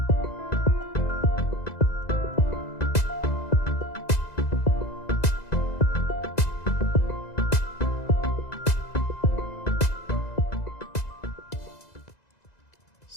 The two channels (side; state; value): right; late; 2.0 ms